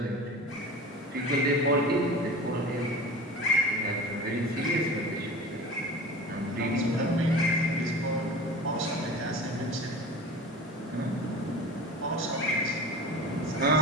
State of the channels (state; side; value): normal; both; correlation 0.35